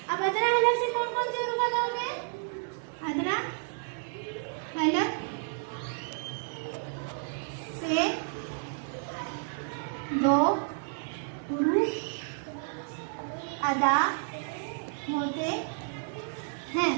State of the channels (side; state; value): left; silent; 57 dB below the other